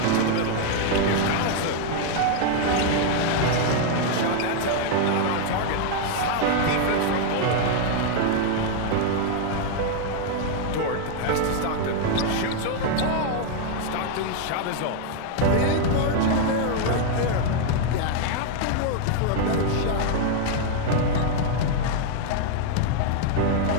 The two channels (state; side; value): different; both; correlation 0.00